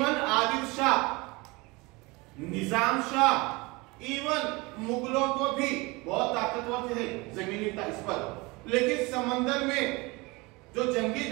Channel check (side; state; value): left; quieter; 24.7 dB